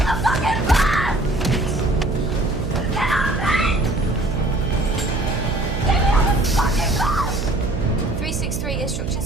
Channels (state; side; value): noise; right; hum, 5 dB below the sound